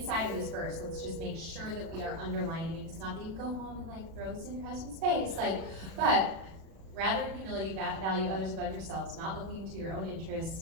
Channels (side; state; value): left; late; 36 ms